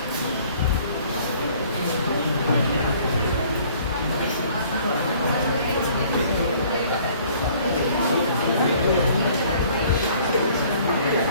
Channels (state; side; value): inverted; both; correlation -0.56